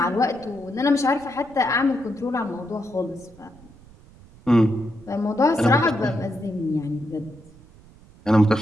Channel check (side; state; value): right; noise; rumble, 24 dB below the sound